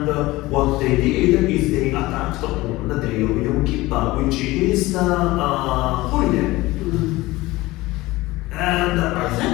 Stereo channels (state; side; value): quieter; right; 19.4 dB